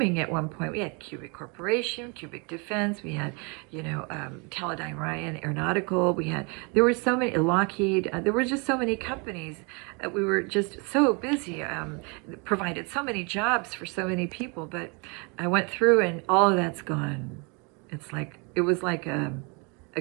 at one point. We had Cubic Corporation, Cubic Defense. We had, Teledyne Ryan Aeronautical. There were so many, Lockheed. There were just so many companies. We were just so busy. Provided so many jobs for so many people. But I went through and all of that's gone. It was like a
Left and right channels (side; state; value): left; quieter; 32.1 dB